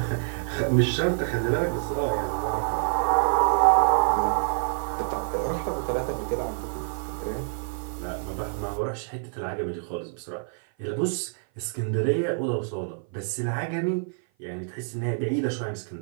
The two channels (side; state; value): left; silent; 55 dB below the other